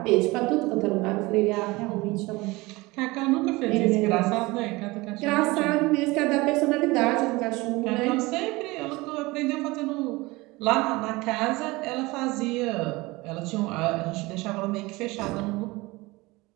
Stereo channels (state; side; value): quieter; left; 22.2 dB